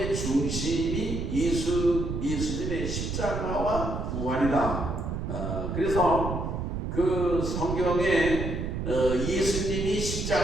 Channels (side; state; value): right; noise; rumble, 3 dB below the sound